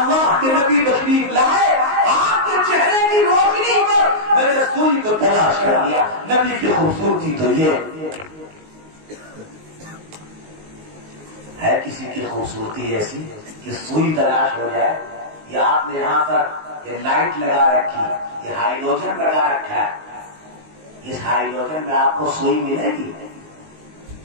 کے نبی تشریف لائے، آپ کے چہرے کی روشنی پر میں نے سوئی کو تلاش کر لیا. نبی کی خوبصورتی تو یہ ہے. کسی کی خوبصورتی ایسی کہ سوئی تلاش ہو جائے. یا آپ نے یہاں پر یہ لائٹ لگا رکھی، یہ ہائیڈروجن لگا رکھا ہے، اس ہائیڈروجن میں آپ کو سوئی ملے گی؟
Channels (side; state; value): left; late; 19 ms